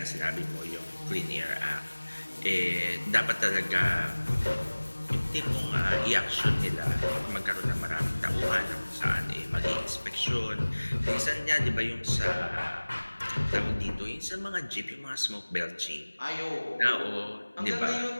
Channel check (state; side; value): inverted; both; correlation -1.00